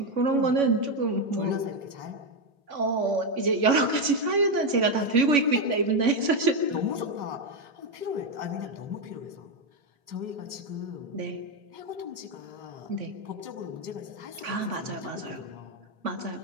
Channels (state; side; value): late; left; 3.6 ms